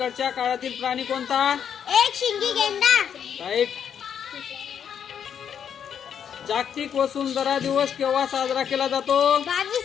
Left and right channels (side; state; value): right; quieter; 8.3 dB